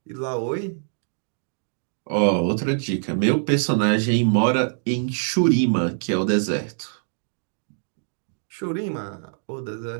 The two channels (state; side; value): silent; left; digital silence